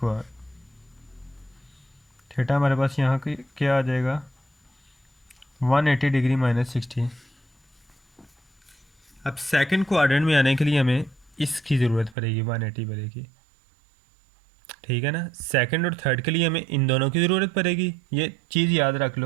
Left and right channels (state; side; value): drops out; left; at 12.2 s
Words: theta हमारे पास यहाँ की क्या आ जाएगा? 180 डिग्री -60। अब सेकंड क्वाड्रेंट में आने के लिए हमें इसकी ज़रूरत पड़ेगी, 180 पड़ेगी, ठीक है ना। सेकंड और थर्ड के लिए हमें इन दोनों की ज़रूरत पड़ेगी, ये चीज़ याद रख